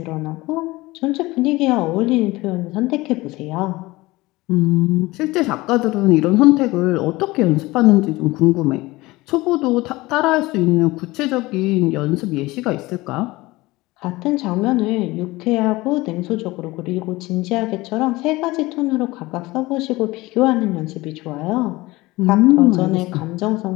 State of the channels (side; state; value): right; quieter; 20.4 dB